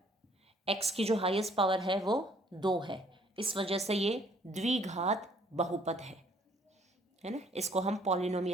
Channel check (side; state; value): both; normal; correlation 0.61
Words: x की जो हाईएस्ट पावर है वो 2 है, इस वजह से ये द्विघात बहुपद है ना. इसको हम